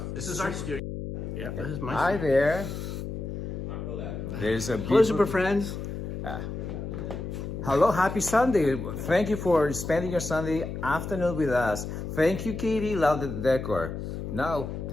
This is our studio. Yeah, this is my Hi studio. there. There's a Hello, beautiful. super friends. Hello. Happy Sunday. Thank you for spending your Sunday afternoon with us. Thank you, Katie. Love the decor. Now,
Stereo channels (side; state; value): left; noise; hum, 6 dB below the sound